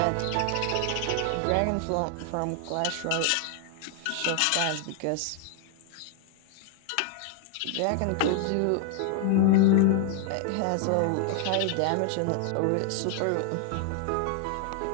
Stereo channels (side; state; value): both; different; correlation 0.00